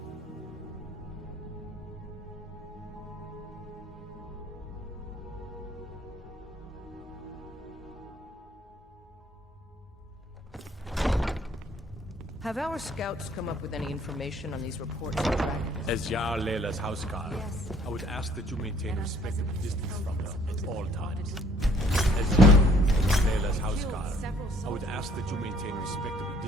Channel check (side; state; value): both; normal; correlation 0.60